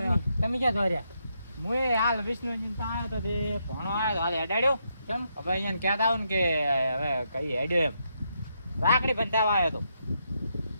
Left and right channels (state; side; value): inverted; both; correlation -0.79